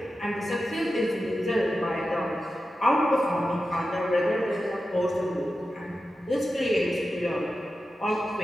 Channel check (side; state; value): both; normal; correlation 0.92